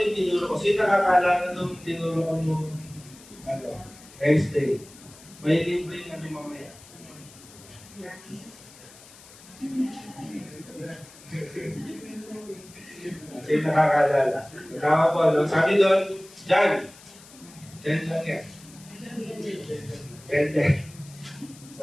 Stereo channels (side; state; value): left; noise; hiss, 21 dB below the sound